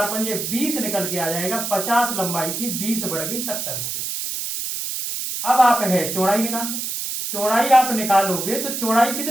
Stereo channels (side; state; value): right; noise; hiss, 4 dB below the sound